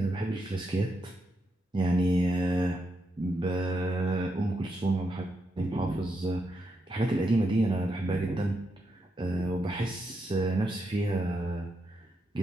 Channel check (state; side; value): normal; both; correlation 0.82